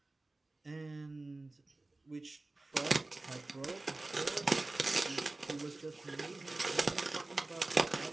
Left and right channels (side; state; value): left; quieter; 3.0 dB